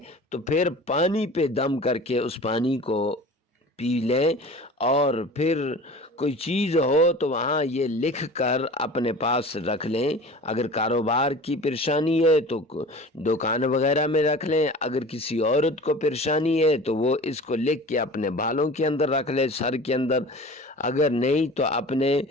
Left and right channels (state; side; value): normal; both; correlation 0.39